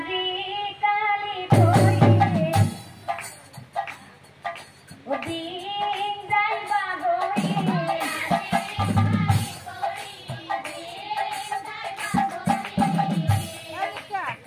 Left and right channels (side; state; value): both; identical; correlation 1.00